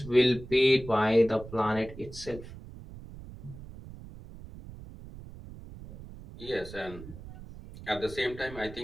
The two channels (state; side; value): noise; right; rumble, 15 dB below the sound